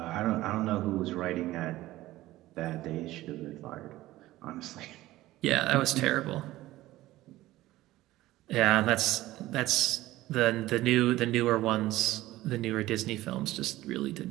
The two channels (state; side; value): quieter; left; 16.5 dB